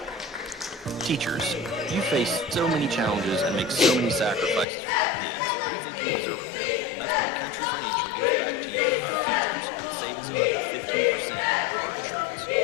Teachers, you face so many challenges and make so many sacrifices for our kids. We think you deserve a medal. That's why Country Financial gives back to you, our teachers, with savings of up to 15% on your car insurance.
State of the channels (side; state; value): right; drops out; at 4.7 s